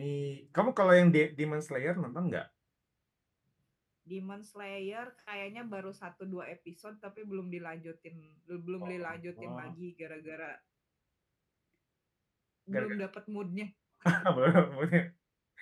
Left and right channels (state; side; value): identical; both; correlation 1.00